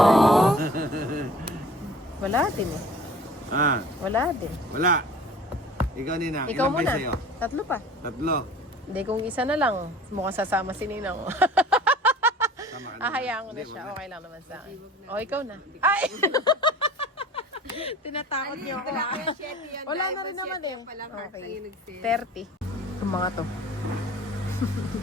Wala din eh. Ah, Wala din. wala. Ikaw, Nina. Ikaw Ilan ba muna. sa'yo? 3 pa. 3. Hindi, kung isa na lang, mukhang sasama si Ninang. Tama ka Ahayaan ko na Hindi, siya. wala. Okay lang naman sa akin. O, ikaw na. Ay! Tinatakot niyo ako. Wala na rin naman eh. Okay. 30. Yung mga to.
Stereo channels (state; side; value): normal; both; correlation 0.45